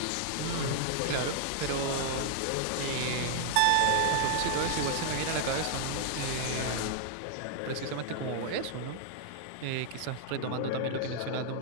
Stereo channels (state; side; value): different; both; correlation -0.01